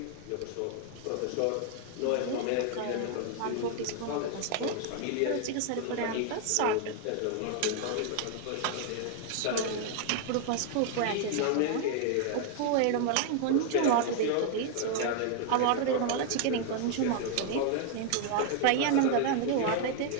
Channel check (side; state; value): both; different; correlation 0.00